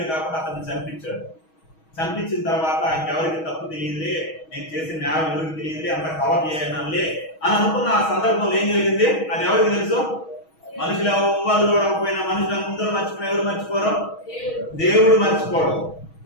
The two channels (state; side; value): late; right; 6.3 ms